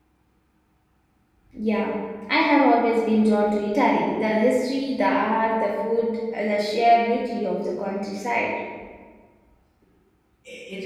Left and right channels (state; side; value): identical; both; correlation 1.00